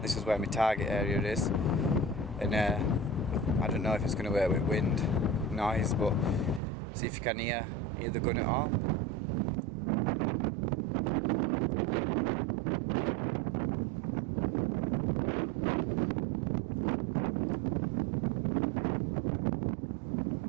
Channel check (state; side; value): drops out; left; at 6.6 s